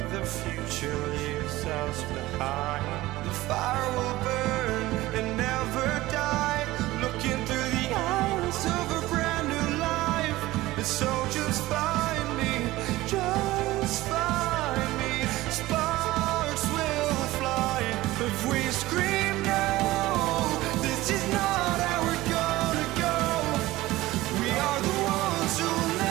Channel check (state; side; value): quieter; left; 17.8 dB